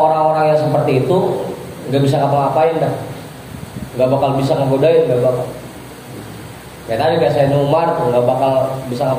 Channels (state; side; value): identical; both; correlation 1.00